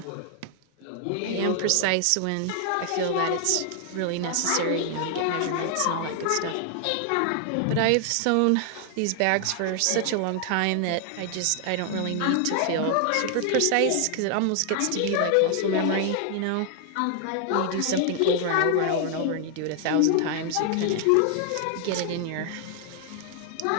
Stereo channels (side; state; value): both; different; correlation 0.00